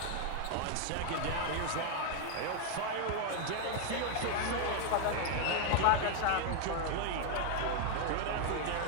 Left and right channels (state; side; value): different; both; correlation 0.00